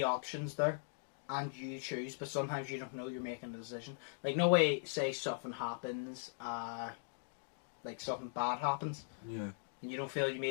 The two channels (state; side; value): silent; right; digital silence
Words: options there and you choose, but sometimes you don't know you're making a decision? Like, no way, say something happens, like something bad happens, and you don't feel you